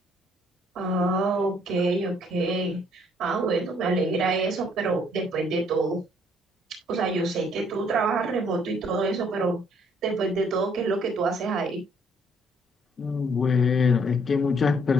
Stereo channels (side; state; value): both; normal; correlation 0.64